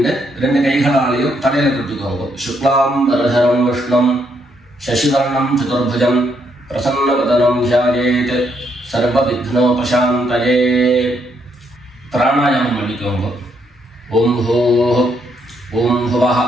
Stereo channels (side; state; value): both; normal; correlation 0.75